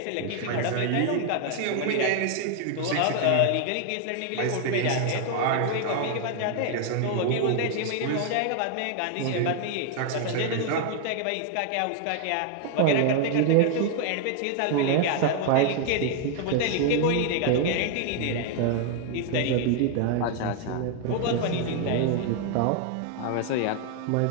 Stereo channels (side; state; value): both; different; correlation 0.00